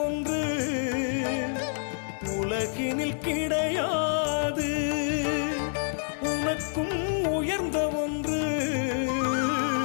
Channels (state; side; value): silent; right; digital silence